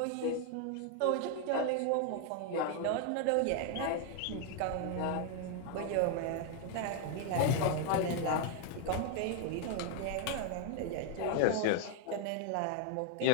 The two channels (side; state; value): both; different; correlation 0.01